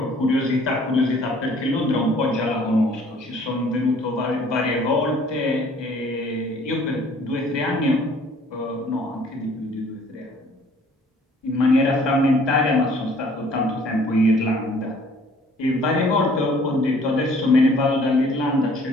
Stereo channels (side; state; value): both; normal; correlation 0.56